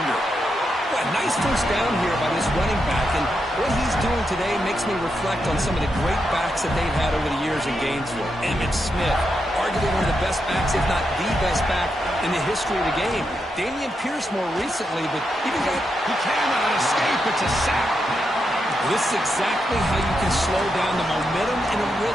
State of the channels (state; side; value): normal; both; correlation 0.84